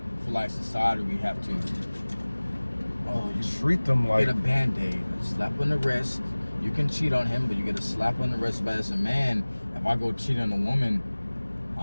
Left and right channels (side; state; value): both; inverted; correlation -1.00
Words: For like society, we have to. Oh, you Treat them like get a band-aid, a slap on the wrist. You can cheat on him, but you get a slap on the wrist. But as a man, if I go cheat on a woman,